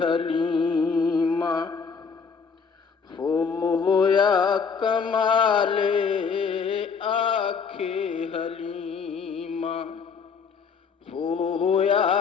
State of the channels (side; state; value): right; quieter; 5.8 dB